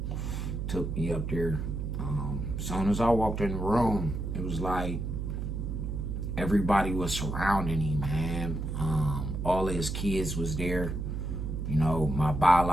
Took me up there. As soon as I walked in the room, it was like everybody was surrounding him, man. All his kids was there. You know, my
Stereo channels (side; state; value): right; noise; hum, 3 dB below the sound